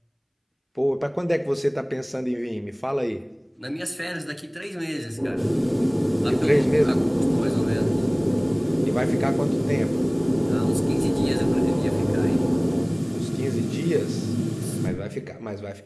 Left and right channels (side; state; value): both; identical; correlation 1.00